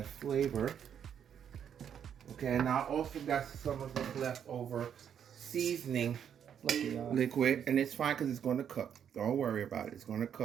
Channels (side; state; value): left; quieter; 8.6 dB